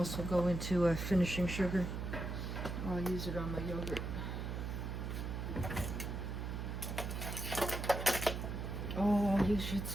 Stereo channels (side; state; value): right; noise; hum, 4 dB below the sound